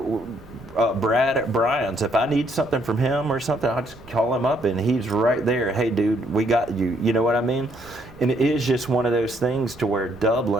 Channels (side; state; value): right; noise; rumble, 21 dB below the sound